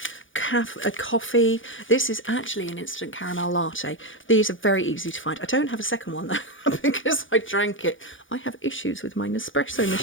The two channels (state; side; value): late; right; 0.57 ms